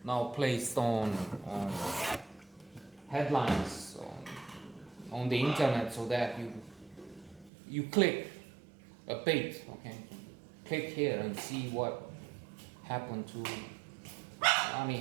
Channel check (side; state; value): left; drops out; at 7.5 s